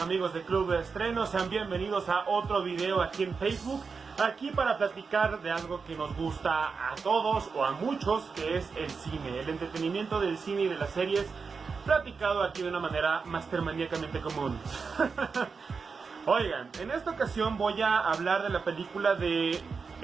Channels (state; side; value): quieter; left; 5.1 dB